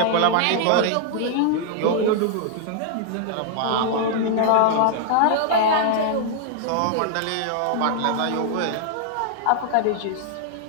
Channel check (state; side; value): different; both; correlation -0.01